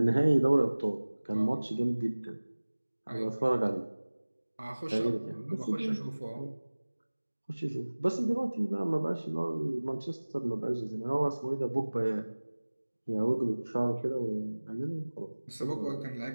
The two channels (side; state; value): both; inverted; correlation -1.00